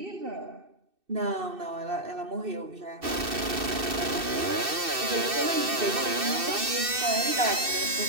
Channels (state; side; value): late; left; 2.6 ms